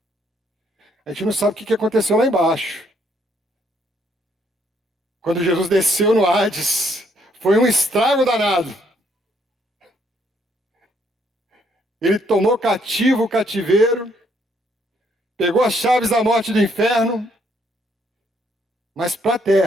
A gente não sabe o que aconteceu lá embaixo. Quando Jesus desceu no Hades, foi um estrago danado. Ele tomou cativo o cativeiro, pegou as chaves da morte e do inferno, mas para a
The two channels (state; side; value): normal; both; correlation 0.70